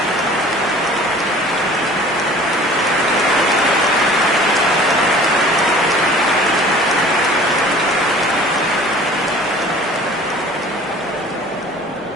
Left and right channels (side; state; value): both; normal; correlation 0.47